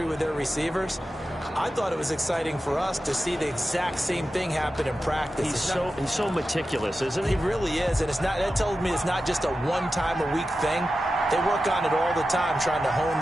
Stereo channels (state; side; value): normal; both; correlation 0.92